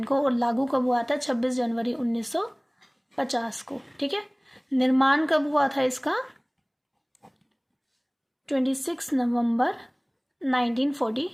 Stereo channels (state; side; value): identical; both; correlation 1.00